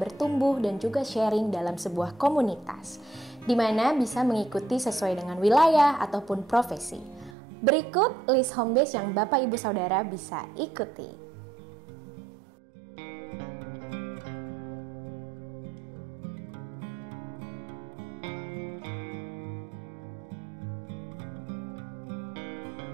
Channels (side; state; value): left; drops out; at 7.4 s